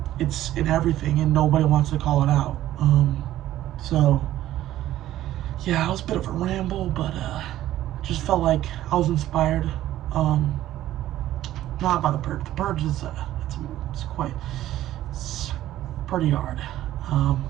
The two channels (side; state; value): left; quieter; 13.7 dB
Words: it's in everything and nobody wants to call it out. So yeah, it was a bit of a ramble, but just felt like I was inspired. Not by The Purge. The Purge is it's pretty hard.